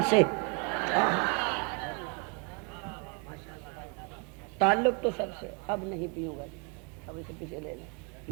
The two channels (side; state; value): left; quieter; 34.9 dB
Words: سے. تعلق تو سب سے. اب نہیں پیوں گا, اب اسے پیچھے لے لیں,